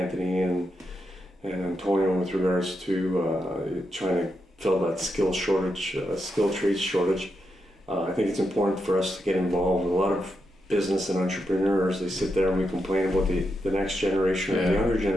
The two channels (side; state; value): both; normal; correlation 0.85